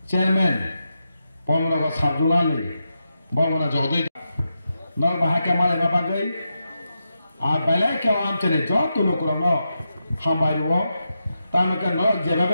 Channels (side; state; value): both; inverted; correlation -0.87